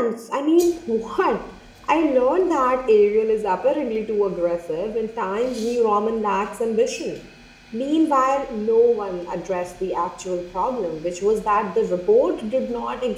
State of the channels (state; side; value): identical; both; correlation 1.00